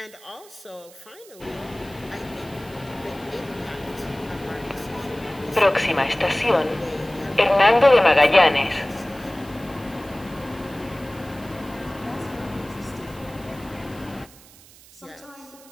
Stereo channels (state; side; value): noise; right; hiss, 23 dB below the sound